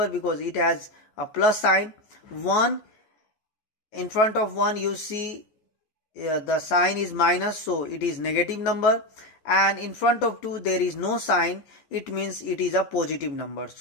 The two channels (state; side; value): late; right; 14 ms